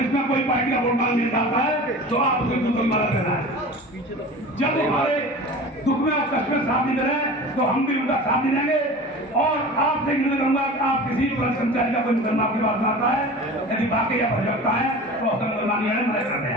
में कोई पार्टी का वोट मांगने आता है तो आप उसको बिल्कुल मदद करना है। जब हमारे दुख में और कष्ट में साथ नहीं दे रहे तो हम भी उनका साथ नहीं देंगे। और आपसे निवेदन करूंगा कि आप किसी भी पुलिस कर्मचारी का कोई मुकदमा आपके पास आता है, यदि वाकई या भजकता है तो उसका मुकदमा मदद करते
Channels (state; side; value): normal; both; correlation 0.36